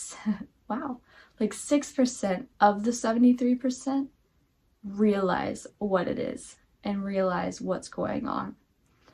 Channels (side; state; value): both; identical; correlation 1.00